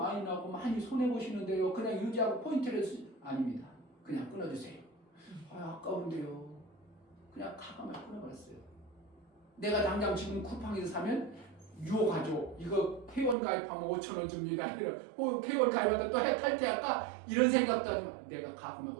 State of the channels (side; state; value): left; drops out; at 13.4 s